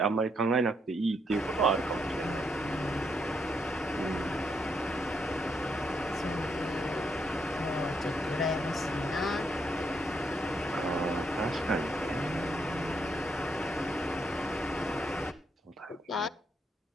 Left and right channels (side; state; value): both; normal; correlation 0.77